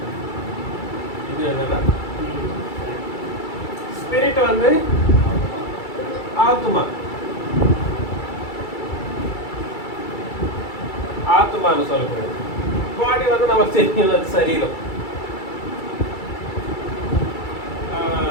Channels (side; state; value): right; late; 2.3 ms